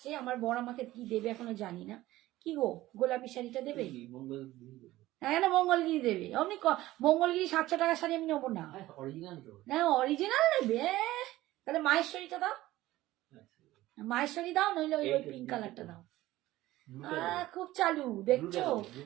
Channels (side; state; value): left; quieter; 16.5 dB